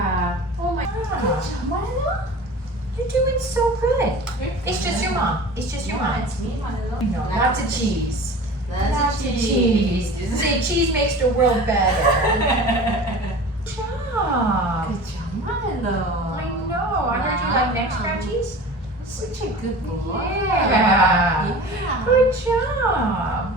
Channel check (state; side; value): normal; both; correlation 0.38